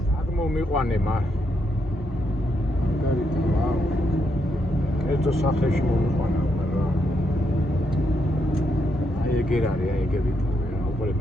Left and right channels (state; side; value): normal; both; correlation 0.79